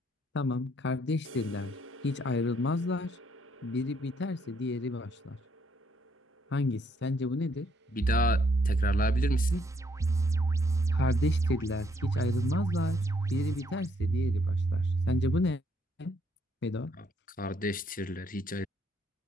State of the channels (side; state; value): both; normal; correlation 0.70